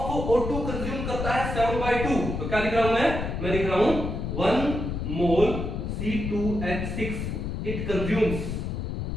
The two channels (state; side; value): noise; left; rumble, 4 dB below the sound